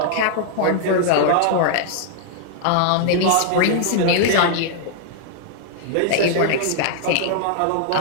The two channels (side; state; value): both; different; correlation -0.01